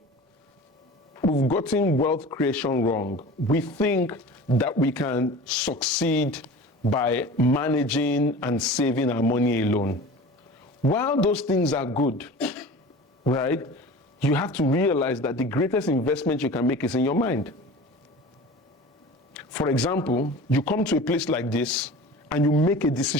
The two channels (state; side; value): normal; both; correlation 0.38